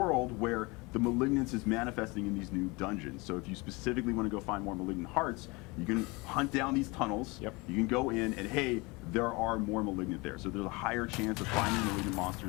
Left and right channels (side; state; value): right; quieter; 25.7 dB